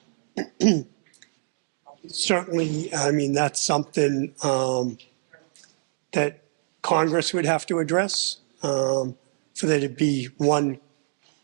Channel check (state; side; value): silent; left; digital silence